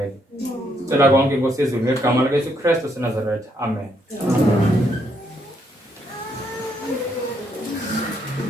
Sicela konke Nkosi yezulu ngegama likaYesu Kristu waseNazaretha. Amen.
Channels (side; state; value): both; normal; correlation 0.74